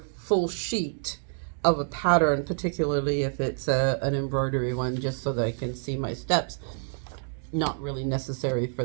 full sheet of a pattern, particularly if it's an embroidery one, just so that I can see my steps, not really necessary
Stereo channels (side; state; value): left; silent; 57 dB below the other